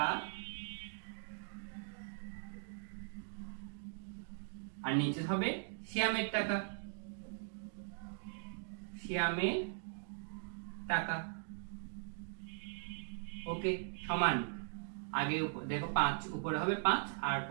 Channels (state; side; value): silent; left; digital silence